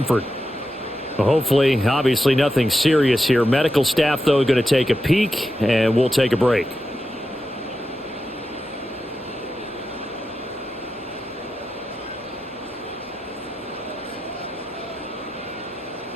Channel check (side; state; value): both; normal; correlation 0.89